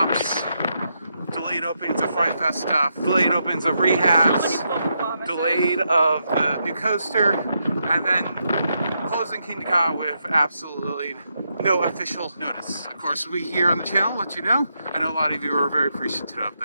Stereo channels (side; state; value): both; inverted; correlation -0.81